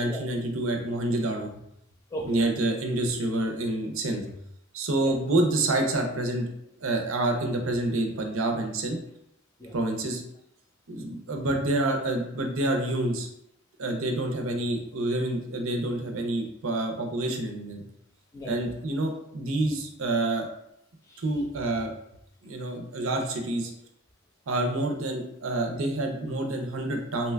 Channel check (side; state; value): both; normal; correlation 0.44